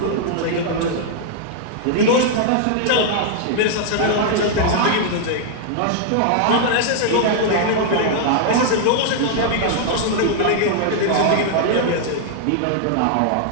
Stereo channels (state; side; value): different; both; correlation -0.01